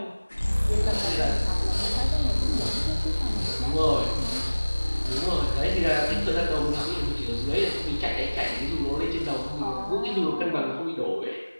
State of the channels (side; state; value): both; inverted; correlation -1.00